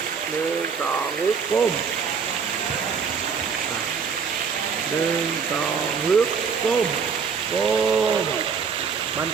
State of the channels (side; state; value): left; quieter; 6.1 dB